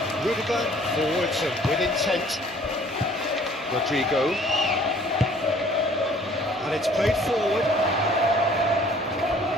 Rudiger, forwards and with intent. Rodrigo, and it's played forward.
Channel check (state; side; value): normal; both; correlation 0.55